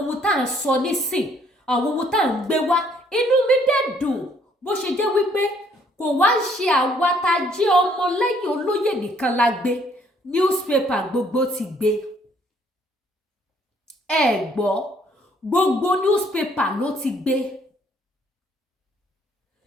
ohun tá à ń sọ nísìn àwọn ohun tá à ń gbé wá inú mi dẹ̀ dùn bó ṣe jẹ́ wípé kò wá ń ṣe àwa tá a jẹ́ ọmọ lẹ́yìn Olóyè nìkan la gbé newspaper gbogbo ti gbé. Ẹ gbọ́ gbogbo newspaper ló ti gbé.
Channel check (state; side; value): normal; both; correlation 0.64